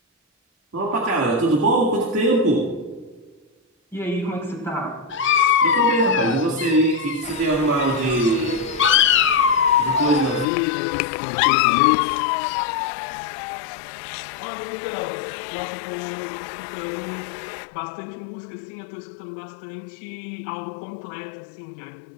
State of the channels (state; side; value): drops out; right; at 10.5 s